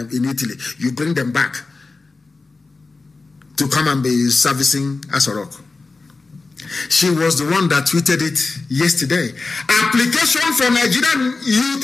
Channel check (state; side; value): quieter; right; 3.8 dB